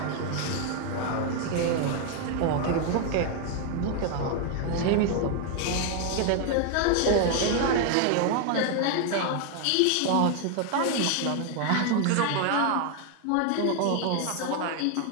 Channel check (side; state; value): both; different; correlation 0.01